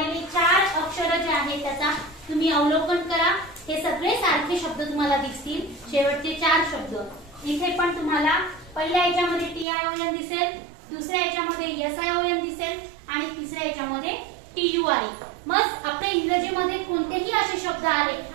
4 अक्षर जे आहेत त्याचा तुम्ही अवलोकन करा। हे सगळे सारखे शब्द तुम्हाला दिसतील, शेवटचे 4 शब्द। इथे पण तुम्हाला पहिल्या याच्यामध्ये TION दिसेल, दुसऱ्या याच्यामध्ये SION दिसेल आणि तिसऱ्या याच्यामध्ये TURE। मग आपल्या इंग्रजीमध्ये कोणतेही असे शब्द आले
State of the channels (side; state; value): left; drops out; at 9.7 s